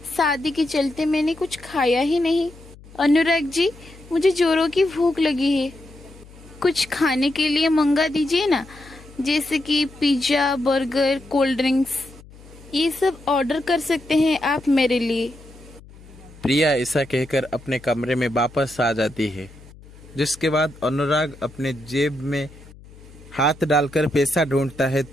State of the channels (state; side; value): noise; left; hum, 21 dB below the sound